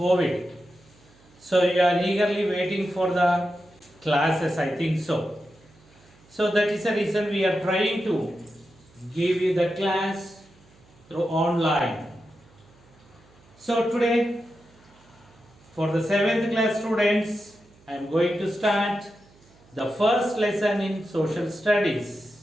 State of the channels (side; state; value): right; noise; hum, 28 dB below the sound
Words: So you are eagerly waiting for the classes, I think so. So that is the reason we are trying to give you the class through online. So today for the 7th class students, I am going to start the first lesson in social